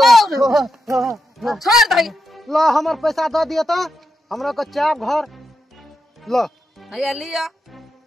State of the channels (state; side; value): normal; both; correlation 0.86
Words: छोड़ दही ला हमर पैसा दे दिए तो हमरा को चाप घर ला हैया लिया